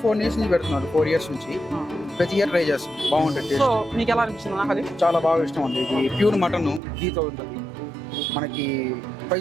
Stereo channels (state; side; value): drops out; left; at 6.8 s